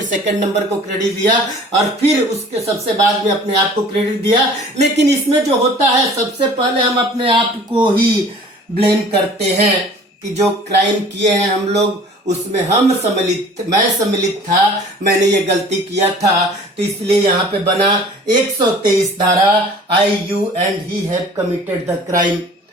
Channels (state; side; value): normal; both; correlation 0.48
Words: सेकंड नंबर को क्रेडिट दिया और फिर उसके सबसे बाद में अपने आप को क्रेडिट दिया। लेकिन इसमें जो होता है सबसे पहले हम अपने आप को ही ब्लेम करते हैं कि जो क्राइम किए हैं हम लोग उसमें मैं सम्मिलित था, मैंने ये गलती किया था, तो इसलिए यहाँ पे बना 123 धारा, I you and he have committed the crime.